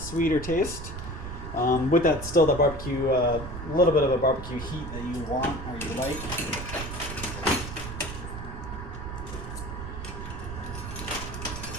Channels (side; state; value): right; noise; rumble, 8 dB below the sound